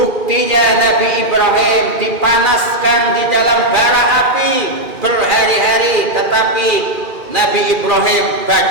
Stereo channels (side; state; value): left; late; 2.4 ms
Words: Nabi Ibrahim dipanaskan di dalam bara api berhari-hari, tetapi Nabi Ibrahim